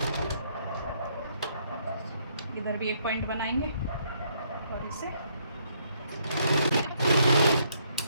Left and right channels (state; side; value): inverted; both; correlation -0.70